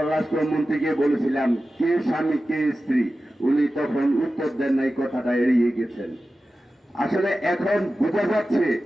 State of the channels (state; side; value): normal; both; correlation 0.94